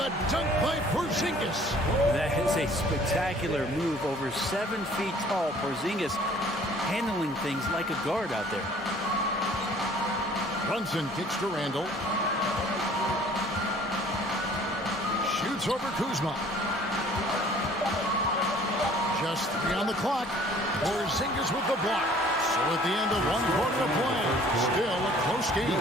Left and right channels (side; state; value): both; normal; correlation 0.54